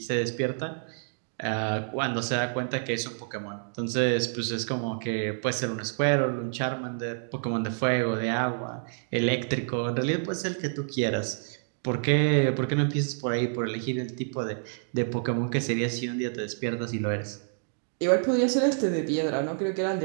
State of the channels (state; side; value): silent; left; digital silence